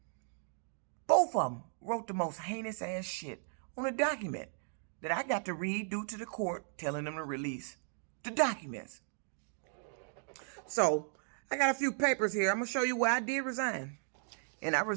Both of them wrote the most heinous ass shit on a document that I got to read due to the court telling them to release the documents. So, I got a few papers here. I'm going to show you where I did resign. And I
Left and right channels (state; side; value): silent; left; digital silence